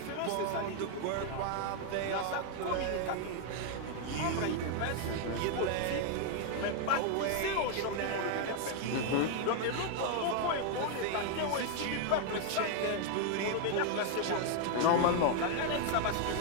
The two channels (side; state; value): both; different; correlation 0.00